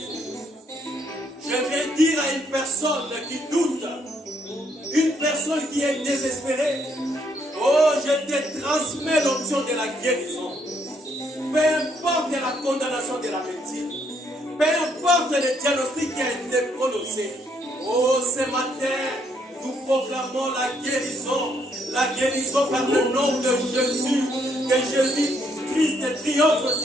Je vais dire à une personne qui doute, une personne qui est désespérée, oh, je te transmets l'option de la guérison. Peu importe la condamnation de la médecine, peu importe le diagnostic qui a été prononcé, oh, ce matin, nous proclamons la guérison par le nom de Jésus, que Jésus-Christ triomphe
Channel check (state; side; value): normal; both; correlation 0.71